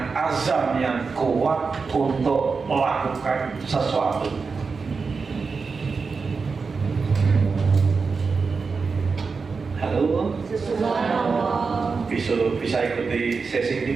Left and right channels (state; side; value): quieter; left; 4.8 dB